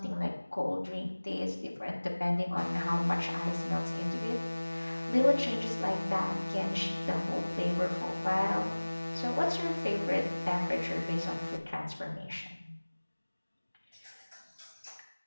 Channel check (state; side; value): inverted; both; correlation -1.00